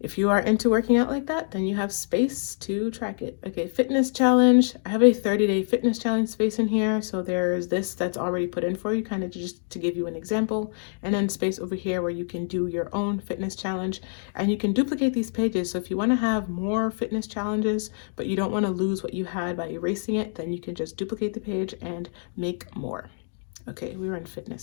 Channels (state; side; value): silent; right; digital silence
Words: if you are into working out like that, then you have space to track it. Okay, fitness challenge. I have a 30-day fitness challenge space in here. So there's this that's already put in for you, kind of just to give you an example. And then space over here where you can do your own fitness challenge. And you can duplicate these pages. So if you want to have more fitness challenges, but you don't want to lose what you had by erasing it, then you can just duplicate the page and make more. Okay, we were in